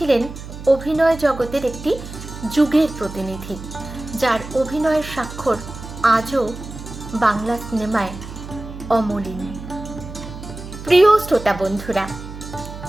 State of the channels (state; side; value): noise; right; hum, 12 dB below the sound